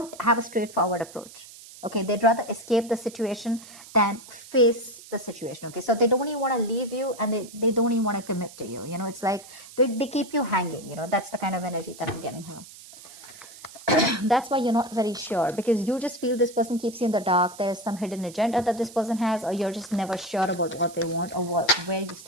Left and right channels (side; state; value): right; noise; hiss, 18 dB below the sound